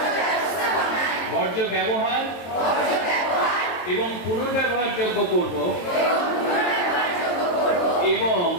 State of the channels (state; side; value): late; right; 23 ms